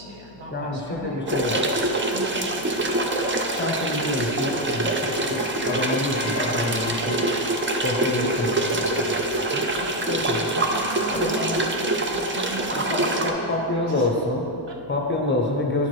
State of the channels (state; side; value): noise; left; hum, 23 dB below the sound